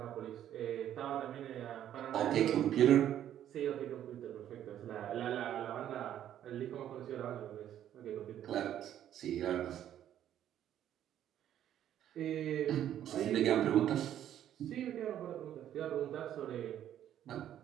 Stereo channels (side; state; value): left; quieter; 11.0 dB